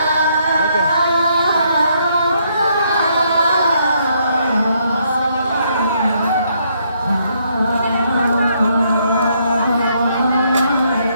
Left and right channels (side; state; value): both; inverted; correlation -0.72